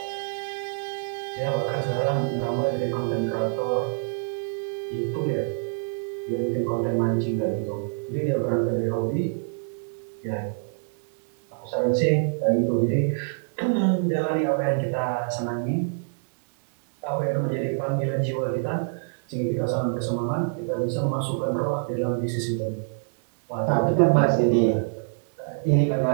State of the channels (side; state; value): left; silent; digital silence